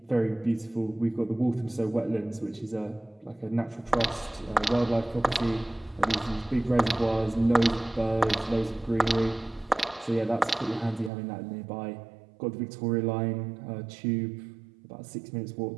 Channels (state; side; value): drops out; left; at 11.1 s